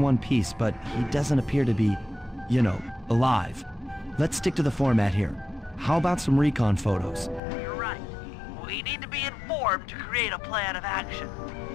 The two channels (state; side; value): drops out; right; at 7.4 s